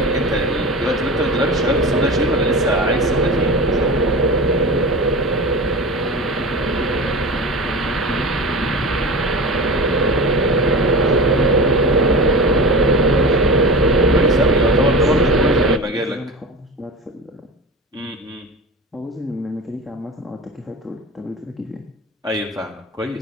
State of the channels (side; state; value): both; normal; correlation 0.30